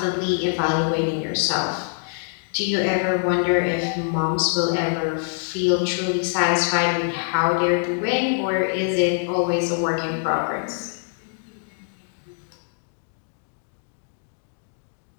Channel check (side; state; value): right; silent; digital silence